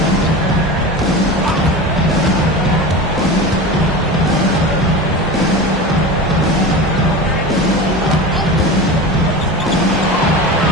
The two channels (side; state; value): both; normal; correlation 0.29